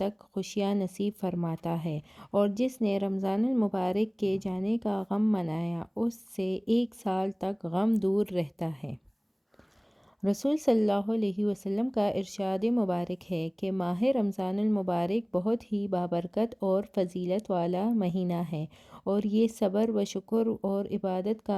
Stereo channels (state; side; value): identical; both; correlation 1.00